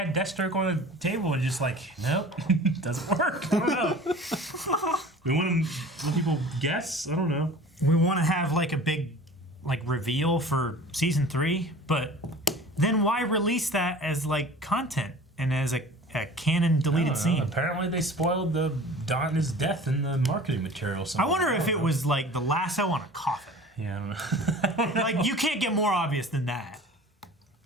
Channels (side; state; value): both; normal; correlation 0.42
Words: Deathstroke on the table and just like, nope, doesn't work. I don't know. We want people guess. I don't know. We want to have like a big reveal for season 3, but then why release that as like content and as a canon deleted scene? Apparently they spoiled the Donna's death in the marketing material. I wonder if it was like the lasso on a coffin. Yeah, I don't know. Like, you can't get more obvious than that.